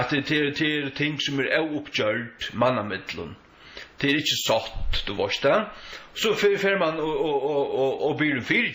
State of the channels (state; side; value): identical; both; correlation 1.00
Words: det ting som oppgjørt mannamidlun. Det er ikke satt, du varst det. Så fer man og blir en